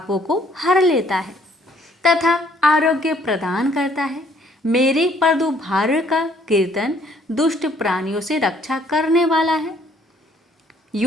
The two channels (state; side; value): normal; both; correlation 0.63